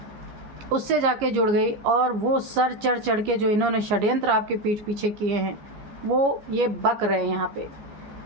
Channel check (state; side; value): late; left; 14 ms